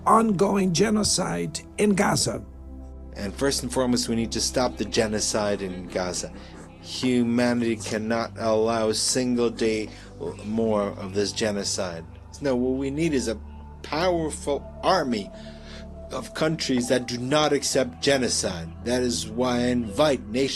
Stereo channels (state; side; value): identical; both; correlation 1.00